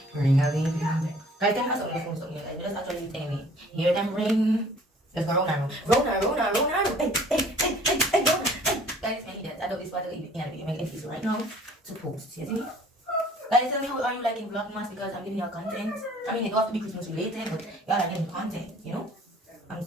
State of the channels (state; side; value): normal; both; correlation 0.54